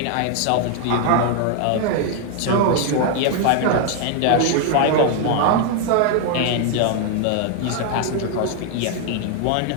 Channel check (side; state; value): both; different; correlation 0.00